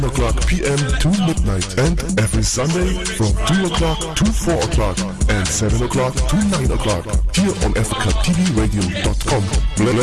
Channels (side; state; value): both; identical; correlation 1.00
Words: o'clock p.m. to midnight. And every Sunday from 2 o'clock to 4 o'clock. And 7 o'clock to 9 o'clock. Here on AfricaTVRadio.com.